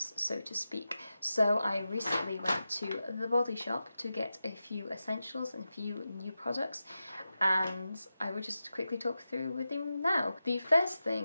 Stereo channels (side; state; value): both; inverted; correlation -0.92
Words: so to speak. So I recently went to the Body Shop to get a few essentials and a few new products, and I will just quickly talk through with you now. The first